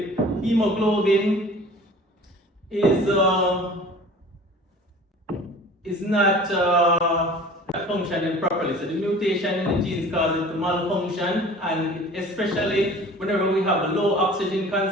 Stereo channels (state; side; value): normal; both; correlation 0.44